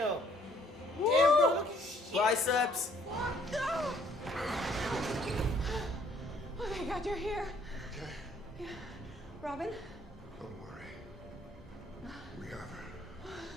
Damn, bro, look at shit. Biceps. No! Oh my God, you're here. Okay, Yeah. Robin? don't worry. We have her.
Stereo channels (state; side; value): normal; both; correlation 0.63